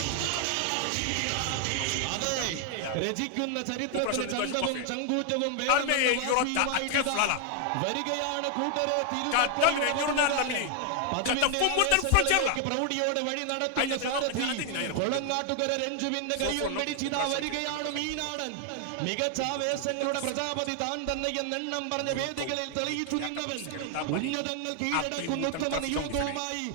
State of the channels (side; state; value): both; different; correlation 0.00